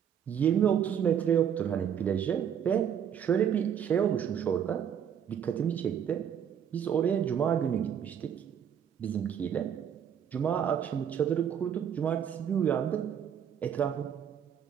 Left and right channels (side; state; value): left; quieter; 8.6 dB